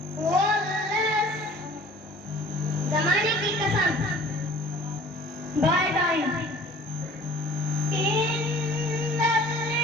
ज़माने की कसम। By time. इन्नल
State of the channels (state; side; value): normal; both; correlation 0.49